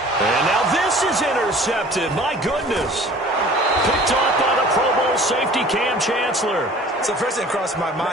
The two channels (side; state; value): both; normal; correlation 0.47